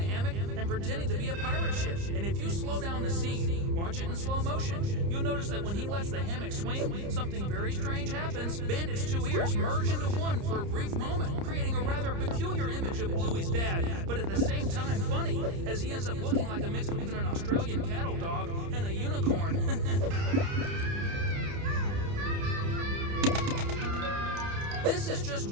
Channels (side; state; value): left; late; 30 ms